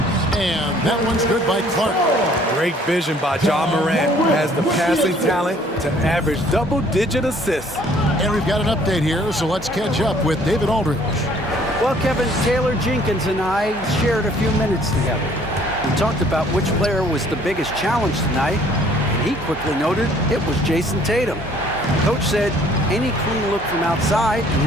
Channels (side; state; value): both; normal; correlation 0.58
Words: And that one's good by Clark. Great vision by Ja Morant. Has the passing talent to average double-digit assists. And we've got an update here, so let's catch up with David Aldridge. Well, Kevin, Taylor Jenkins and I shared a few minutes together. We talked about which player was the biggest challenge tonight, and he quickly noted it was Jason Tatum. Coach said any clean look from outside and